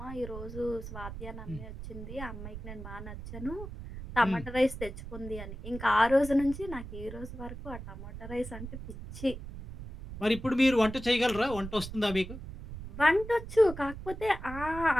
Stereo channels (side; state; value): right; noise; rumble, 10 dB below the sound